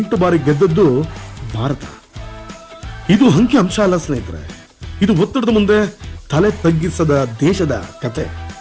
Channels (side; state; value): both; identical; correlation 1.00